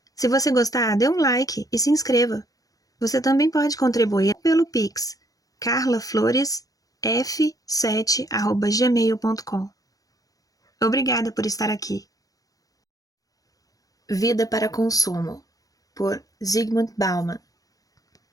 Se você gostar, dê um like e se inscreva. Você também pode contribuir pelo Pix, carlafloresf7@gmail.com. Obrigada por estar aqui. Vida para Consumo, por Zygmunt Bauman,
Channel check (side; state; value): right; late; 0.17 ms